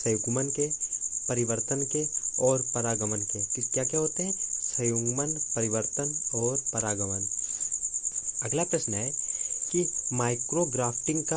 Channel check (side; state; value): both; identical; correlation 1.00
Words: के, परिवर्तन के और परागमन के। क्या क्या होते हैं? संयुग्मन, परिवर्तन और परागमन। अगला प्रश्न है कि माइक्रोग्राफ्टिंग